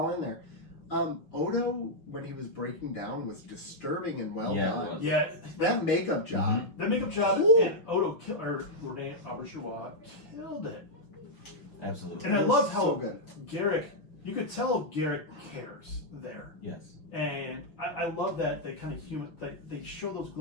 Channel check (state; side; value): late; right; 5.9 ms